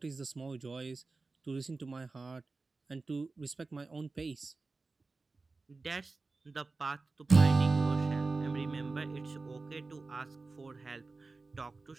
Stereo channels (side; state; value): left; quieter; 3.7 dB